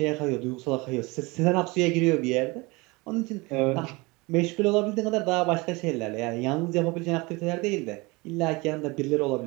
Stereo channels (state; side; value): quieter; left; 24.8 dB